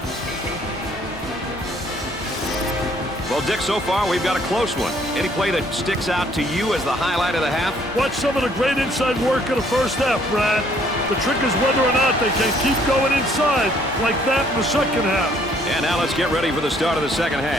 Well, Dick, so far we've got a close one. Any play that sticks out to you as the highlight of the half? Watch some of the great inside work in the first half, Brad. The trick is whether or not they can keep going inside like that in the second half. And now let's get ready for the start of the second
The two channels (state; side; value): normal; both; correlation 0.63